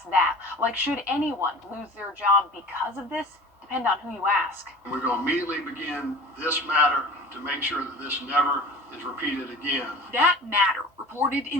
that, like should anyone lose their job because of this, depend on who you ask. We're going to immediately begin this matter to make sure that this never is repeated again. That matter, reported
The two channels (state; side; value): normal; both; correlation 0.40